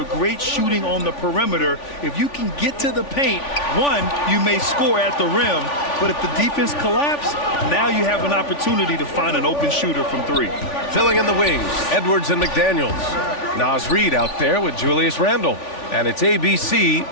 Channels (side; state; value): right; late; 3.4 ms